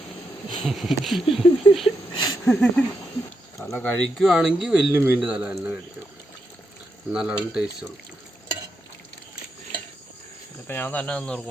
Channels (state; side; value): normal; both; correlation 0.83